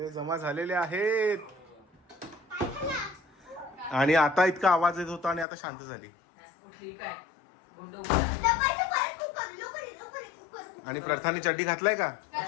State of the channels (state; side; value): drops out; right; at 5.5 s